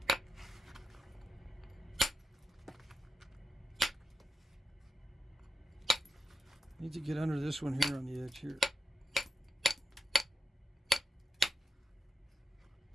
Need to get under this one here on the edge here.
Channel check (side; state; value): both; normal; correlation 0.87